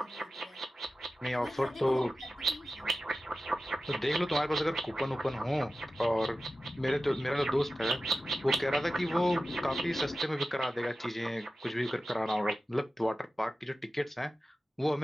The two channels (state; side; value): normal; both; correlation 0.94